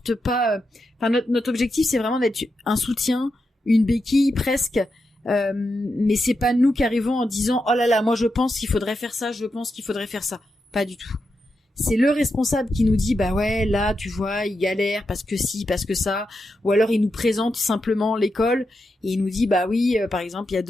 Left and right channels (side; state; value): both; normal; correlation 0.87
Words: pas. Notre objectif c'est vraiment d'être un soutien, une béquille presque. Mais c'est pas nous qui arrivons en disant oh là là, moi je pense qu'il faudrait faire ça, pas du tout. C'est le responsable qui nous dit ouais, là tu vois il galère parce que ci, parce que ça, ou alors il nous présente simplement l'école et il nous dit oui, par exemple il y a